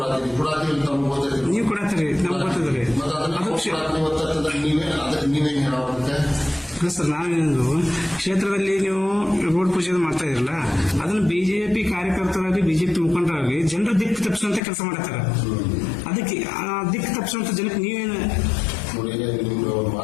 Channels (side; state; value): right; drops out; at 14.6 s